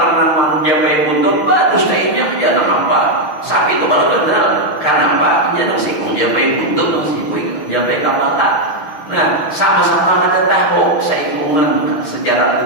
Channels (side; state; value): right; late; 6.5 ms